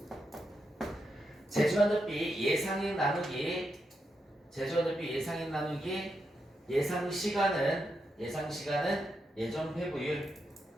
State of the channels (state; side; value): normal; both; correlation 0.84